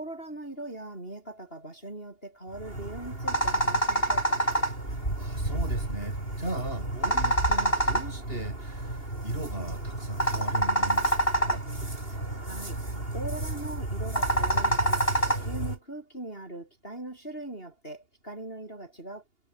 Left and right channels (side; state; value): right; late; 2.8 ms